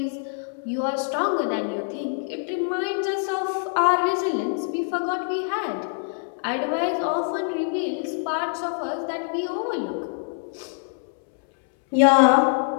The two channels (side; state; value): right; silent; 62 dB below the other